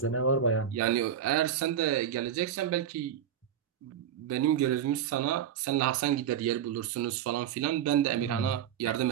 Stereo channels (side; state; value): left; quieter; 9.1 dB